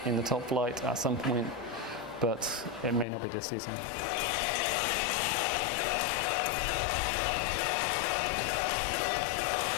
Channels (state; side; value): drops out; right; at 3.1 s